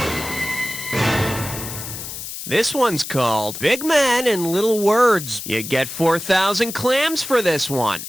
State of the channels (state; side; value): noise; left; hiss, 9 dB below the sound